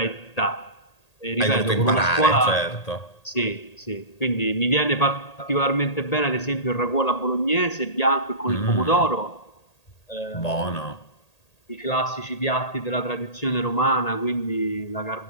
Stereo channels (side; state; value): right; late; 1.8 ms